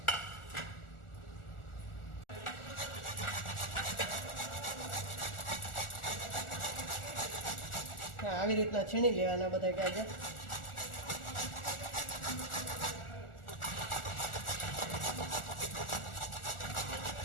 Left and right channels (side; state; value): right; late; 1.4 ms